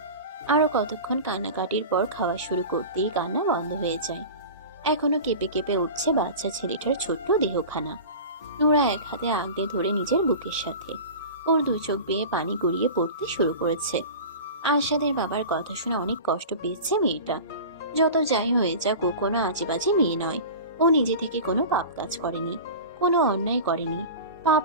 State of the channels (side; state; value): both; inverted; correlation -0.33